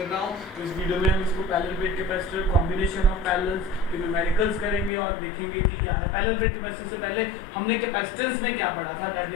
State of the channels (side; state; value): right; drops out; at 4.9 s